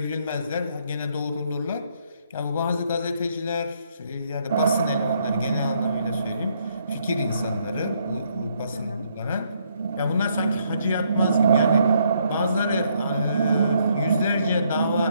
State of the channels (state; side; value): inverted; both; correlation -0.71